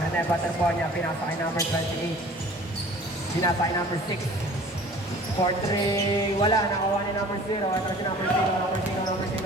Rene, battle ball niya. Pinatake number 28. Pinatake number 6. 4-3, wala, nakuha ni number 0. Ito si number 0, number 0, number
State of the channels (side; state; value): both; normal; correlation 0.47